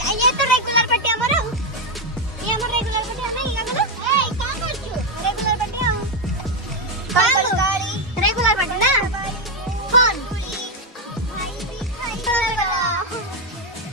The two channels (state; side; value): normal; both; correlation 0.05